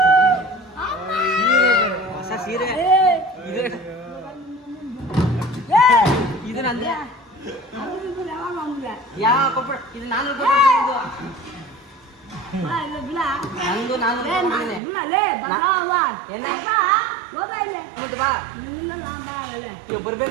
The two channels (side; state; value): left; drops out; at 14.8 s